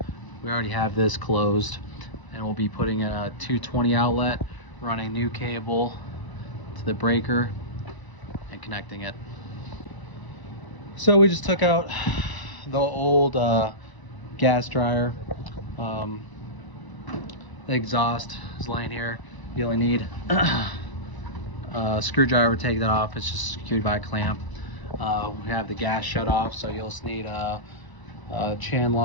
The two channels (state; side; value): late; right; 1.0 ms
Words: We already have this closed, and we'll be putting a 220 outlet, running new cable to the breaker and connecting it. So we just took out the old gas dryer. The exhaust is laying here. You only need a screwdriver to take that off. It's just secured by a clamp. We have the gas shut off, so you'll just need chain